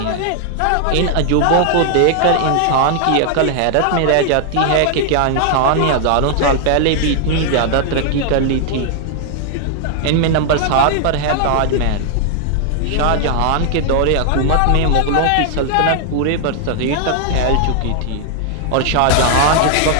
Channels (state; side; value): different; both; correlation 0.00